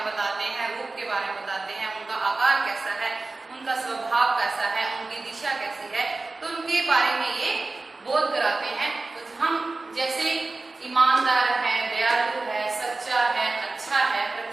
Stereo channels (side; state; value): left; quieter; 3.4 dB